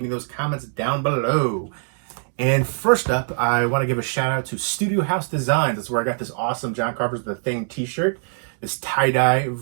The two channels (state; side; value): silent; left; 64 dB below the other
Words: me those comments down below. And first up, I want to give a shout out to Studio House Designs. That's where I got this awesome John Carpenter's The Thing t-shirt, this tie-dye